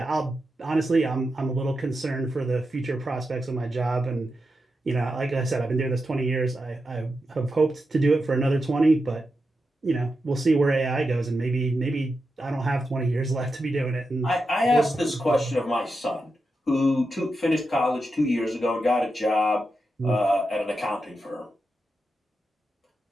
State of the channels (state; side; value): normal; both; correlation 0.88